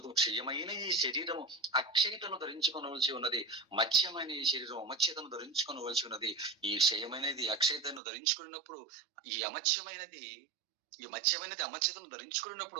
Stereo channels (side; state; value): left; drops out; at 8.0 s